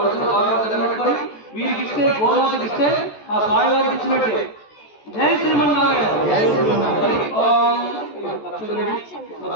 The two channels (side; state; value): right; late; 14 ms